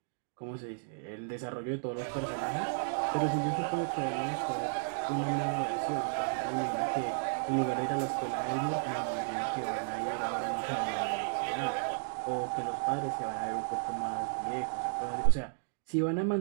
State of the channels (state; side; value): silent; left; digital silence